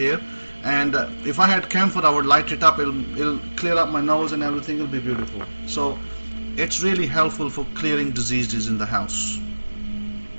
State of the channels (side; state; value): both; inverted; correlation -1.00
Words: and if I had camphor, I would light it up. It'll clear up my nose and everything. It'll be beautiful. So it's really helpful for clearing diseases in the house.